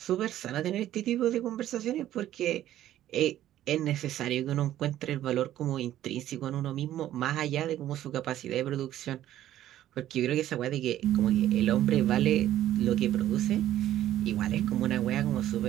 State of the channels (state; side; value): quieter; left; 12.7 dB